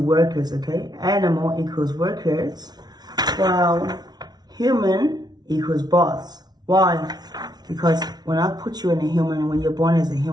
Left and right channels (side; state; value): left; late; 0.19 ms